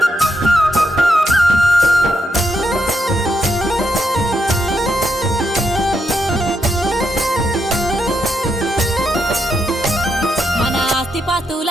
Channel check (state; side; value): normal; both; correlation 0.80